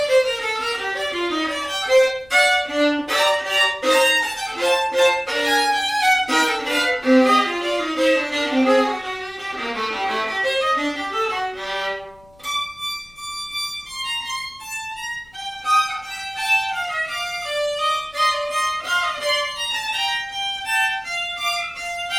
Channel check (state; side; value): noise; left; rumble, 29 dB below the sound